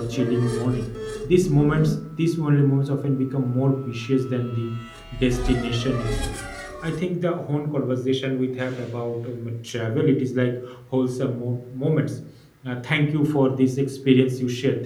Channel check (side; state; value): both; identical; correlation 1.00